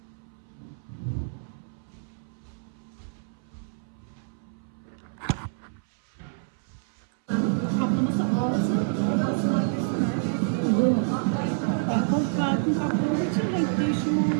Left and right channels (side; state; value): left; silent; 60 dB below the other